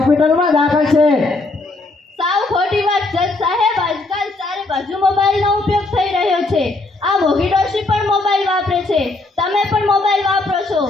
દાખલ છે. સાવ ખોટી વાત જજ સાહેબ. આજકાલ ચારે બાજુ મોબાઈલનો ઉપયોગ થઈ રહ્યો છે. આ મોગી ડોશી પણ મોબાઈલ વાપરે છે, તમે પણ મોબાઈલ વાપરો છો,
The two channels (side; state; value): right; quieter; 3.1 dB